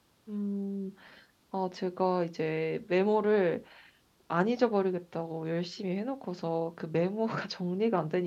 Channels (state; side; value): identical; both; correlation 1.00